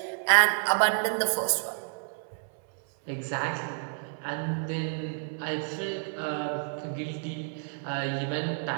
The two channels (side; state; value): left; silent; 58 dB below the other